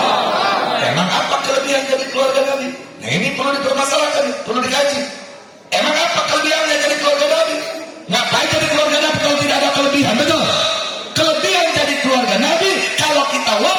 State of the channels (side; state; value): both; identical; correlation 1.00